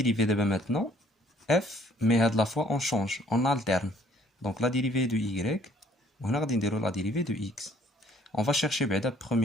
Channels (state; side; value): normal; both; correlation 0.60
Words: d'abord maintenant f, mais à la fois on change, on alterne. Donc la dérivée de y, on a la dérivée de x. On va chercher, en